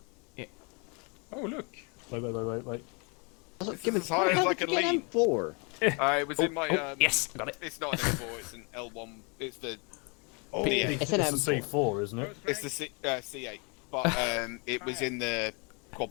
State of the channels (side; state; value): right; quieter; 32.6 dB